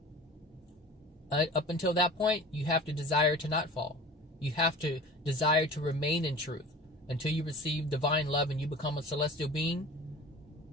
Up until that point, you have to desire to not fall. You have to desire to remain in truth until you receive divine love and you become a celestial being.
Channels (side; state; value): both; normal; correlation 0.39